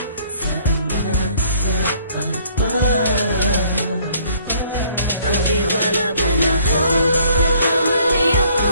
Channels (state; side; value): inverted; both; correlation -0.61